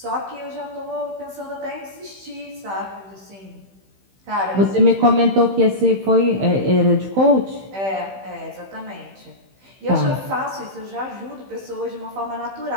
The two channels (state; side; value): late; left; 15 ms